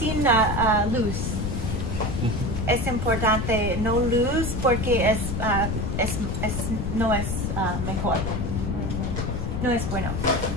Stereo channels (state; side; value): noise; left; rumble, 2 dB below the sound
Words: luz. Es importante no luz porque no es mejor. No es bueno.